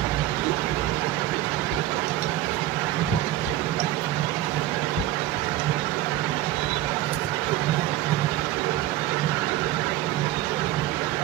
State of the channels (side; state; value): left; quieter; 14.4 dB